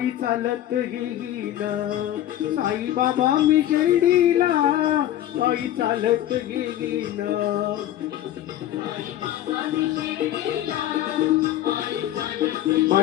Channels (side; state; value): right; quieter; 12.7 dB